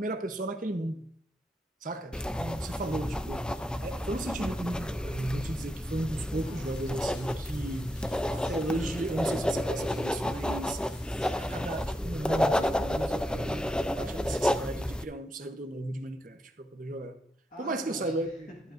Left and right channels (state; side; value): normal; both; correlation 0.82